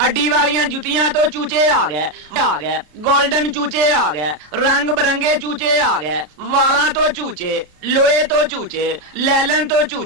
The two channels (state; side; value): late; left; 33 ms